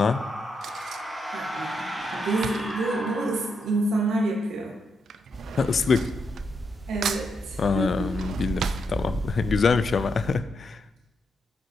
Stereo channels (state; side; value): normal; both; correlation 0.81